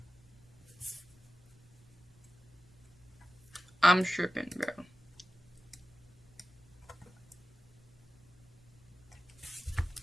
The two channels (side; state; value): both; normal; correlation 0.92